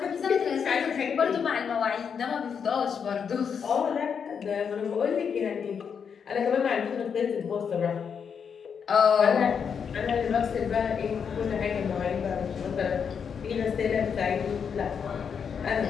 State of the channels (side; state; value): right; quieter; 6.8 dB